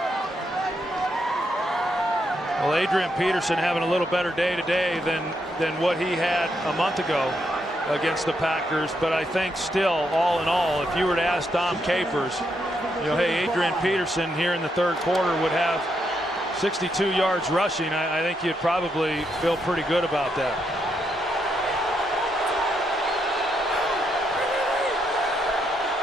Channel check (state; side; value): normal; both; correlation 0.79